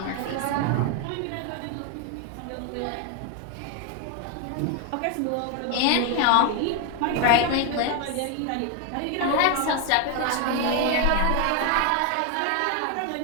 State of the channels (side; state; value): both; different; correlation 0.01